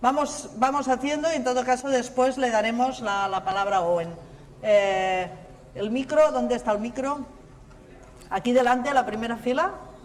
haciendo y en todo caso después le daremos la palabra a Owen. El micro, ¿dónde está el micro? Aquí delante, a la primera fila.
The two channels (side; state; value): both; identical; correlation 1.00